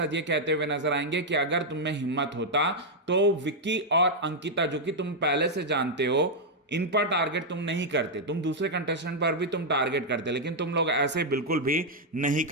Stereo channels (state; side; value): normal; both; correlation -0.02